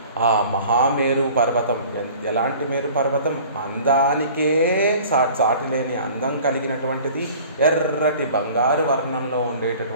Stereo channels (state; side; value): inverted; both; correlation -0.46